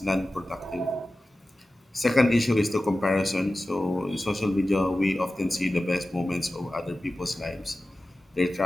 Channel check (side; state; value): both; normal; correlation 0.95